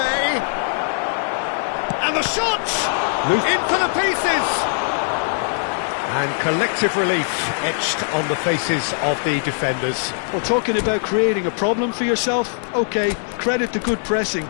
And the shot! In for the pieces! And collective relief etched on the faces of the defenders. Well, talking about creating a problem for yourself, OK, credit to good pressing,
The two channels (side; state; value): right; silent; digital silence